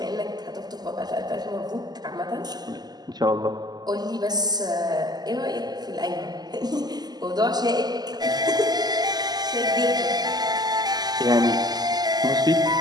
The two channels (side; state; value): left; late; 0.20 ms